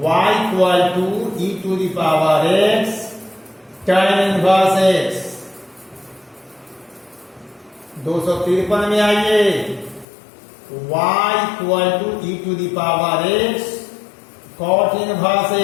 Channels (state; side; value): drops out; right; at 10.1 s